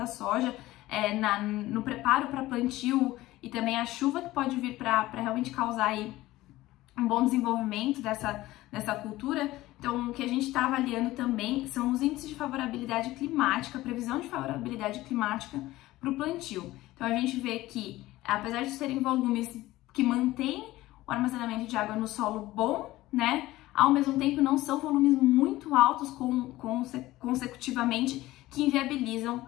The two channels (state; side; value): quieter; right; 17.2 dB